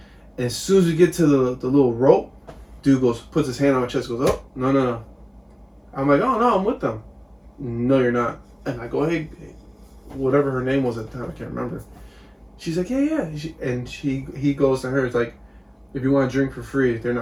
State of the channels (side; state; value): both; identical; correlation 1.00